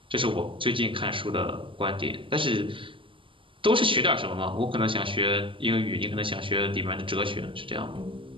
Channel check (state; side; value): late; left; 0.25 ms